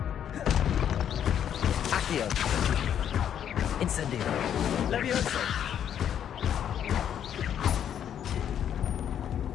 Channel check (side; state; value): right; quieter; 9.4 dB